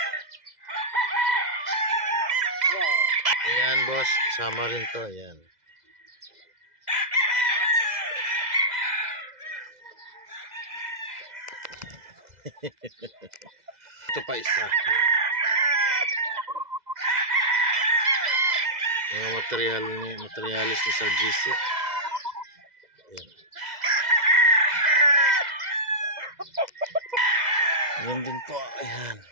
Ayan boss, kasama rin to. Ayan. Ito pa isa. Yung materialis ni Sir GC. Ayan. Yan din po. Ayan.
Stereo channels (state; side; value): late; left; 2.0 ms